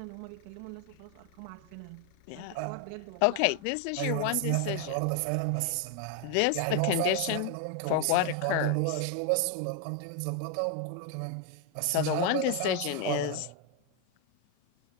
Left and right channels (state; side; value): different; both; correlation 0.01